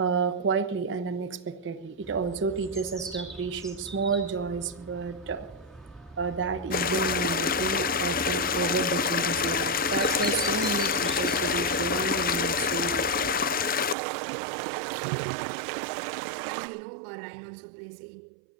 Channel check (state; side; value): drops out; left; at 14.0 s